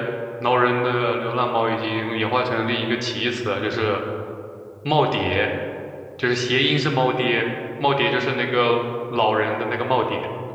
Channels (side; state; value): both; identical; correlation 1.00